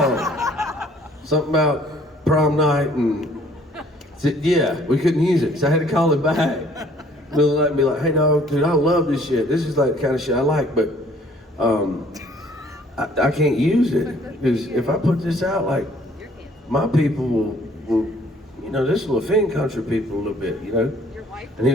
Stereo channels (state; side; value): normal; both; correlation 0.59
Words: Something about prom night and yeah, we couldn't use it. So I had to call it back. They'll let me like, "Hey dog, dude, I love this shit. This is like the kind of shit I like, but I can't use it. Because if I put this out, like, my people will, you know, this will offend country people a little bit, you know?" And he